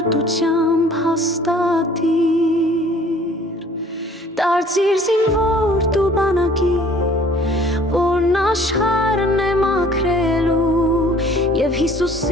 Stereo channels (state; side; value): normal; both; correlation 0.54